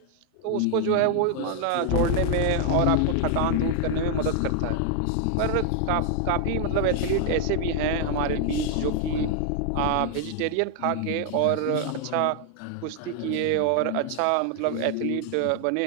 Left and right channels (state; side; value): different; both; correlation 0.00